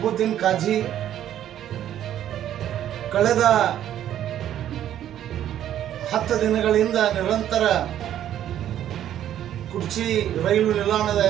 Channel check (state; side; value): quieter; left; 11.2 dB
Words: ಕಾಜಿ ಕಳೆದ 10 ದಿನಗಳಿಂದ ನಿರಂತರ ಕುರ್ಚಿ ರೈಲು ನಿಲ್ದಾಣದ